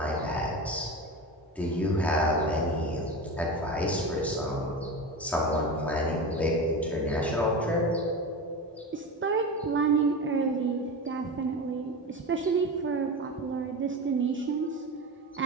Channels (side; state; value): both; normal; correlation 0.25